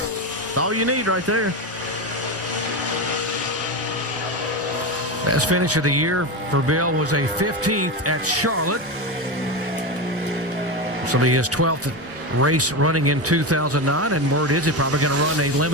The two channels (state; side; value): normal; both; correlation 0.17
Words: all you need right there. Best finish of the year for Bill was a 15th at Charlotte. So he his 12th race running in 2009, and word is he's probably going to run a